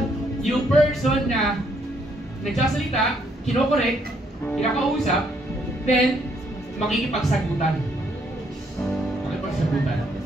yung person na nagsasalita, kinokorek, kinakausap, then makikipagsagutan.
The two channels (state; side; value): normal; both; correlation 0.70